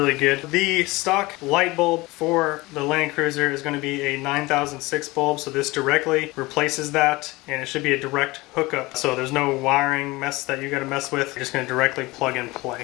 good. The stock light bulb for the Land Cruiser is going to be a 9006 bulb, so this directly replaces that, and it should be a direct hookup, so there's no wiring mess that you got to mess with. You're just going to directly plug and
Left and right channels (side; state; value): right; quieter; 21.6 dB